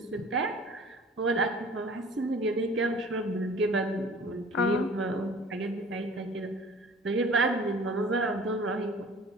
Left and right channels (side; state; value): both; normal; correlation 0.46